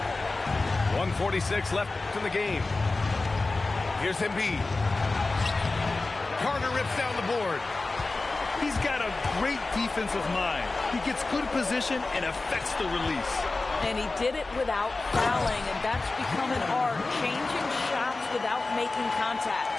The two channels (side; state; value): right; quieter; 3.4 dB